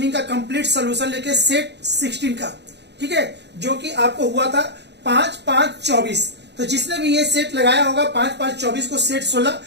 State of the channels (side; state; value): left; late; 0.50 ms